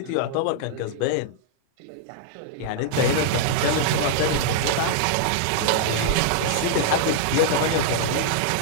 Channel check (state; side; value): different; both; correlation -0.01